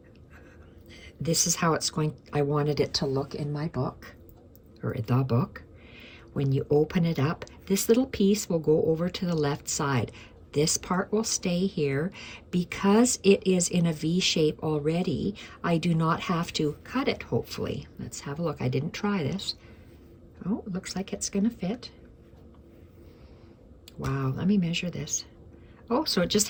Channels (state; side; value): identical; both; correlation 1.00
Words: this is how it's going, I wanted it to look in my book, or the book. When you open it up, this little piece will go over to the left side. This part will stay here. Because it is in a V shape already, I do not have to cut it, hopefully. Let's have a look. I didn't try this. Oh, it looks like it's gonna fit. Wow, let me measure this. Oh, so it just